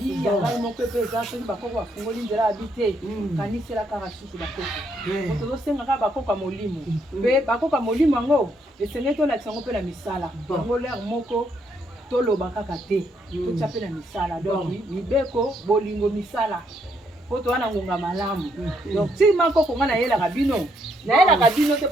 yangai moko pe eza soki bakoko bafungoli nzela abite kanisela kaka susu bakoko tozosengaka bakoko ya molimo mpe bakoko ya molimo yango esengeli tolakisa yango mpe na misala yango lere moko toloba kaka te totya mpe na misala donc mibeko bolingo misala poto wana ngonga malamu donc si mako konga na yela kabino te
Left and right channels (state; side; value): normal; both; correlation 0.74